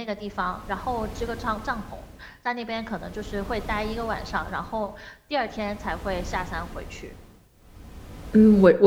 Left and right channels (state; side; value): identical; both; correlation 1.00